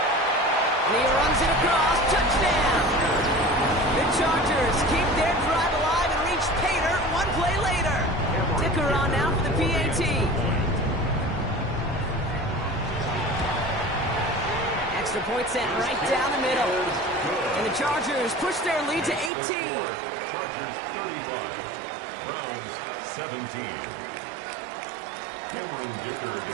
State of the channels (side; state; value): left; drops out; at 19.3 s